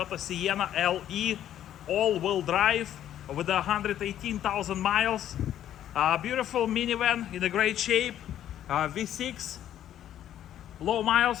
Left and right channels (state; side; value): quieter; right; 11.2 dB